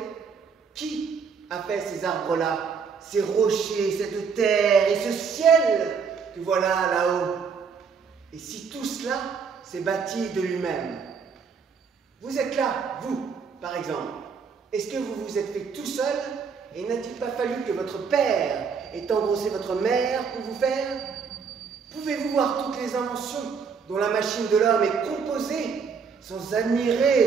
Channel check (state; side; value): quieter; left; 5.9 dB